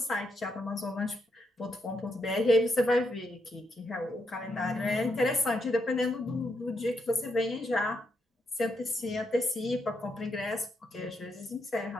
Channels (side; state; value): both; normal; correlation 0.80